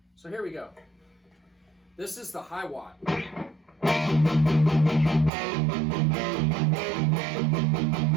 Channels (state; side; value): drops out; left; at 5.3 s